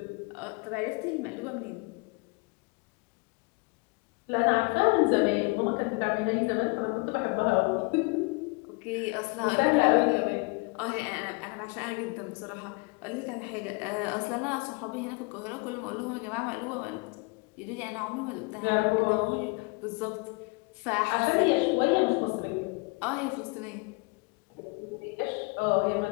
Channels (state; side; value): quieter; right; 29.6 dB